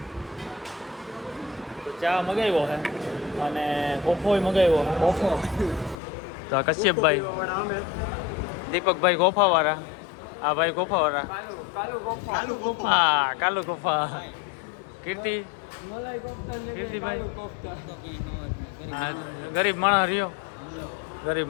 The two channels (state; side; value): drops out; right; at 6.0 s